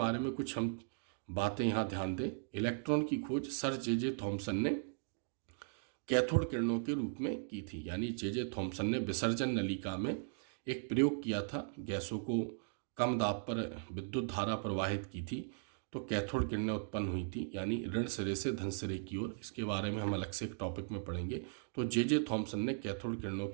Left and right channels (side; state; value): left; silent; digital silence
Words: में कुछ हम बातें यहाँ ध्यान दें। इलेक्ट्रॉन की खोज सर जे थॉमसन ने कैथोड किरणों के रूप में की थी, यानी जे थॉमसन ने विसर्जन नलिका में एक प्रयोग किया था, गैसों को कम दाब पर विद्युत धारा प्रवाहित की थी, तो कैथोड किरणें उत्पन्न हुई थी, यानी ऋण सिरे से धन सिरे की ओर। इसके बारे में हम अलग से एक टॉपिक में पढ़ेंगे। तो जे थॉमसन ने कैथोड किरणों